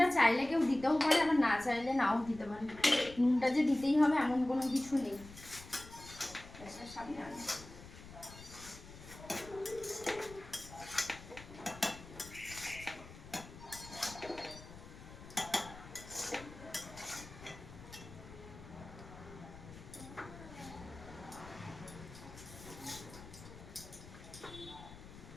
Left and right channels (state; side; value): noise; left; rumble, 16 dB below the sound